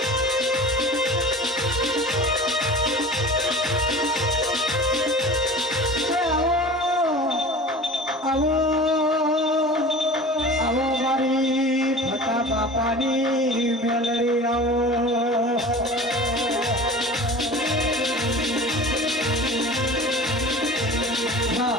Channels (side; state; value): both; normal; correlation 0.38